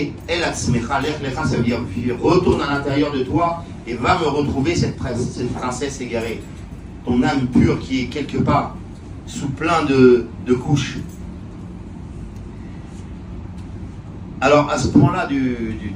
el atzmecha, l'ech lecha, ça veut dire, retourne à l'intérieur de toi et va me retrouver cette princesse égarée. Ton âme pure qui est quelque part, sous plein de couches. Alors, à ce point-là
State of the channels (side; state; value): both; identical; correlation 1.00